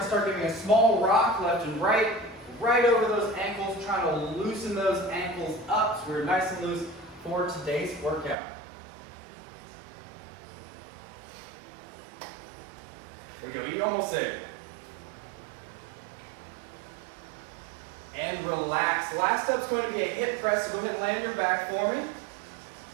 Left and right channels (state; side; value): drops out; left; at 8.3 s